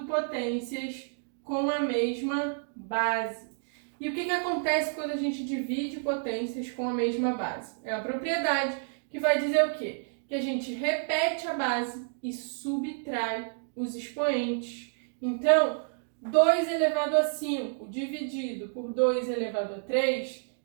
potências com a mesma base. E o que acontece quando a gente divide potências com a mesma base? É a propriedade que vai dizer o quê? Que a gente repete a base e subtrai os expoentes. Então, 2 elevado a 5 dividido por 2 elevado a 3,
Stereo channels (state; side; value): silent; left; digital silence